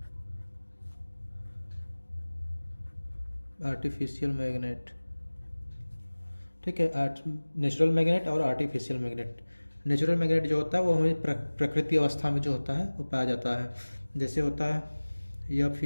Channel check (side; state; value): both; inverted; correlation -1.00